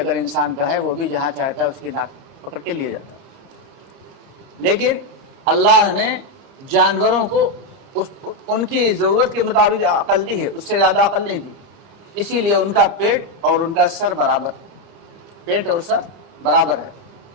इंसान का है वो भी जहाँ चाहता है उसकी नाक पकड़ के लिए जाता है। लेकिन अल्लाह ने जानवरों को उनकी ज़रूरत के मुताबिक अकल दी है, उससे ज़्यादा अकल नहीं दी। इसीलिए उनका पेट और उनका सर बराबर, पेट और सर बराबर है।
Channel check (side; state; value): left; late; 30 ms